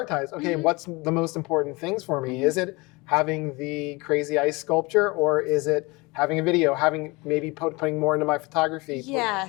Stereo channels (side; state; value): right; quieter; 25.0 dB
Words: Okay, what's the most important things for me? Is it having the crazy ice sculpture, or is it having a video, maybe putting more into my photography?